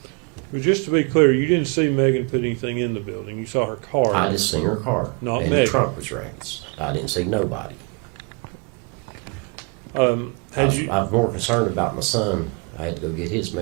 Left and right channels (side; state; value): left; quieter; 34.0 dB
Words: But just to be clear, you didn't see Megan put anything in the building. You saw her car. I just seen her car, Not and Megan. the trunk was raised. I didn't see nobody. Had you, I was more concerned about my son. I had to go get his